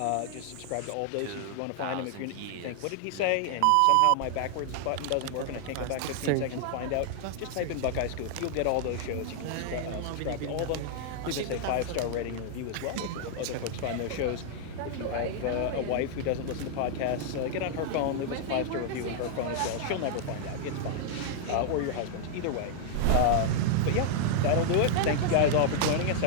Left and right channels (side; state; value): both; different; correlation -0.01